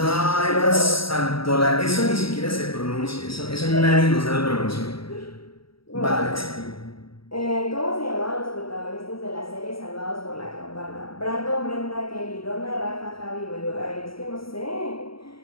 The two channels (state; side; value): late; right; 0.75 ms